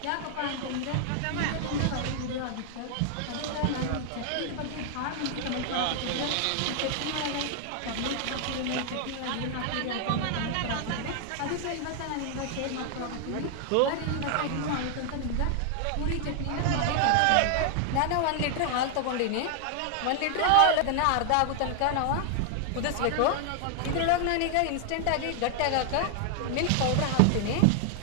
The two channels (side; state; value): both; different; correlation 0.00